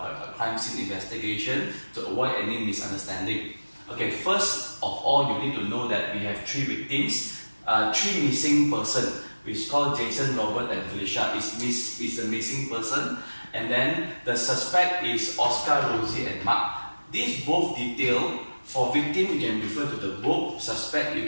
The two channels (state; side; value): inverted; both; correlation -1.00